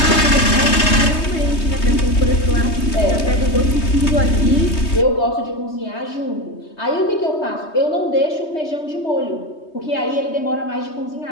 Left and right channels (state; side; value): late; right; 3.2 ms